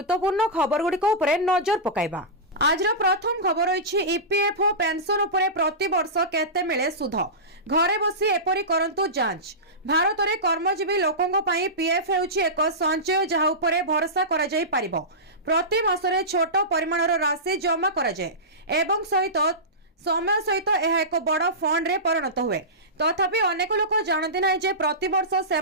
खबर गुडी को उपरे नजर पकाइबा। आज प्रथम खबर रही ईपीएफओ पेंशन उपरे प्रति वर्ष केते मिले सुध घरे बसी एपरी करंतु जांच। भारत में कर्मजीवी लोकों पई पीएफ हेउछि एक संचय जहा उपरे भरोसा करा जाई पारिबो। प्रति मासरे छोट परिमाणर राशि जमा करा जाए एवं सहित समय सहित यह एक बड़ फंड रे परिणत हुए तथापि अनेक लोक जानते ना जे प्रति वर्ष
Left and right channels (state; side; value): normal; both; correlation -0.18